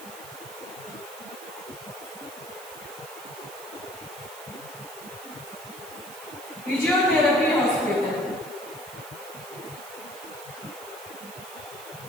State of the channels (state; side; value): noise; right; hiss, 15 dB below the sound